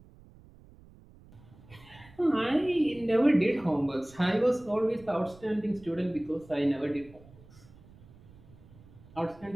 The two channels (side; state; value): right; noise; rumble, 23 dB below the sound